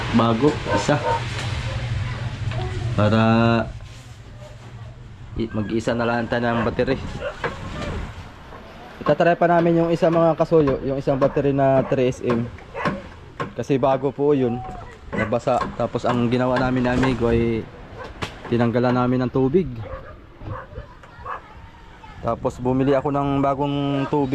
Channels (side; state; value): both; identical; correlation 1.00